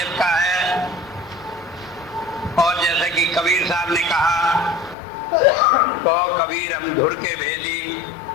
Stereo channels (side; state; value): right; drops out; at 5.0 s